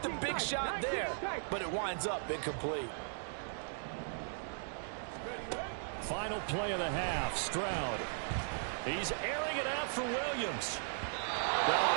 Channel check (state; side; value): silent; left; digital silence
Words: the big shot there, but it winds up incomplete. Final play of the half, Stroud. He's airing it out for Williams. Oh,